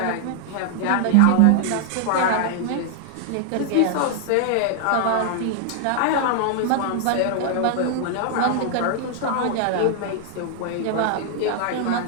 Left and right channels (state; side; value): different; both; correlation 0.00